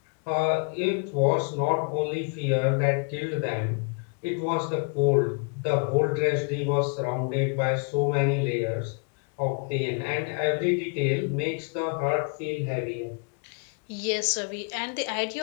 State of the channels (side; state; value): right; quieter; 36.2 dB